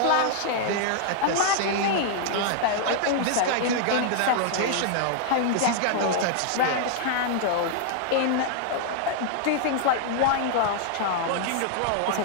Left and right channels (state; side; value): different; both; correlation -0.01